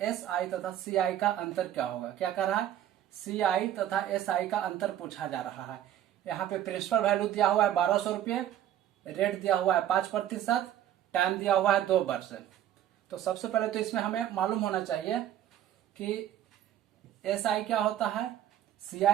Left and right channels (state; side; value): quieter; left; 11.4 dB